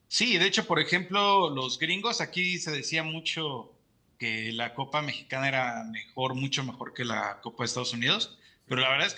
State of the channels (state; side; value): identical; both; correlation 1.00